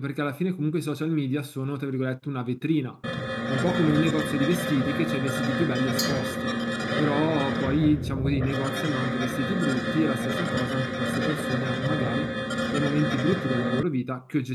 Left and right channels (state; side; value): identical; both; correlation 1.00